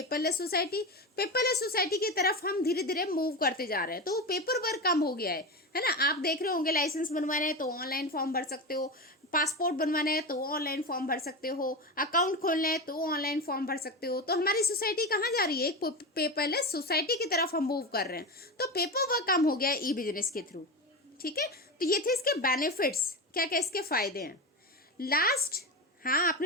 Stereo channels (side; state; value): both; normal; correlation 0.20